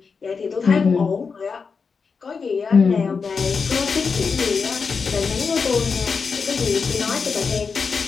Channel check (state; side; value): quieter; right; 5.2 dB